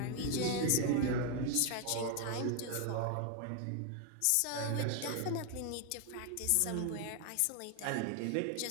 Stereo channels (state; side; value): different; both; correlation 0.00